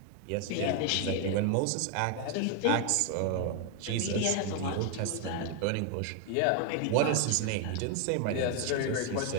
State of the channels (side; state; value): both; different; correlation 0.01